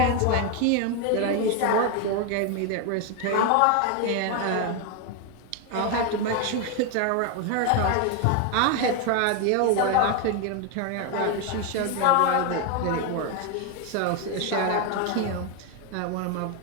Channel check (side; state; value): both; different; correlation 0.01